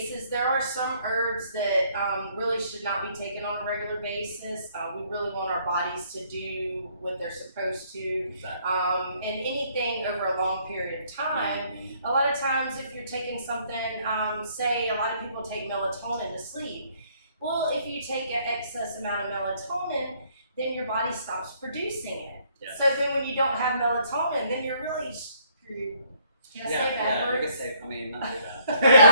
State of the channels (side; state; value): both; inverted; correlation -0.65